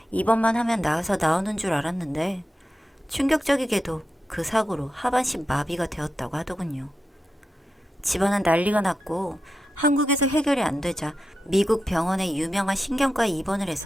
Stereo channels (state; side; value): normal; both; correlation 0.89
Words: 입원만 하면 나아서 나오는 줄 알았는데 충격적이게도 그 사고로 하반신 마비가 되었다고 하더군요. 집안은 난리가 났고 한국에서 해결이 안 되자 미국 병원의 유명한 신경과에 입원을